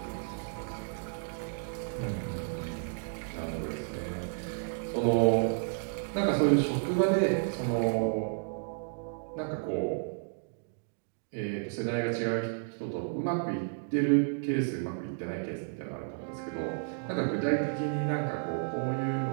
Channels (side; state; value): left; silent; digital silence